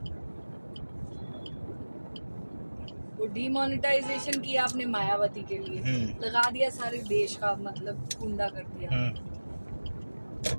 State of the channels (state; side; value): inverted; both; correlation -1.00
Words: वो डीमोनेटाइजेशन किया आपने मायावती के लिए, लगा दिया सारे देश का मतलब गुंडा कर दिया।